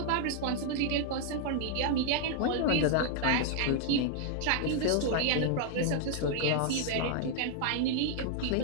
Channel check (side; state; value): both; different; correlation -0.01